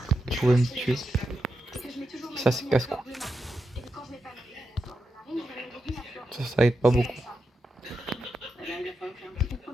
Je pouvais me tuer. Ça c'est casse-cou. Ça aide pas beaucoup.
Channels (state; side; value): normal; both; correlation 0.87